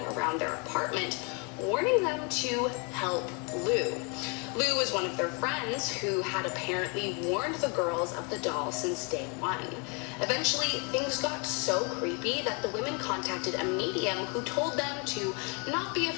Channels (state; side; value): quieter; right; 34.2 dB